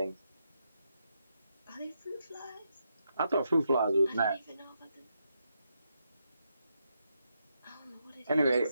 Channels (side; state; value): both; inverted; correlation -0.82